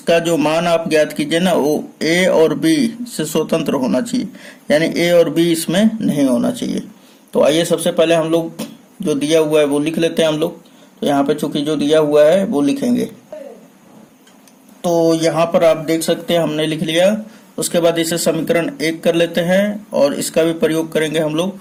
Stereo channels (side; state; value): both; identical; correlation 1.00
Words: जो मान आप ज्ञात कीजिए ना, वो ए और बी से स्वतंत्र होना चाहिए, यानी ए और बी इसमें नहीं होना चाहिए। तो आइए सबसे पहले हम लोग जो दिया हुआ है वो लिख लेते हैं हम लोग। तो यहाँ पे चूंकि जो दिया हुआ है वो लिखेंगे। तो यहाँ पर आप देख सकते हैं हमने लिख लिया। उसके बाद इसे समीकरण 1 कर लेते हैं और इसका भी प्रयोग करेंगे हम लोग,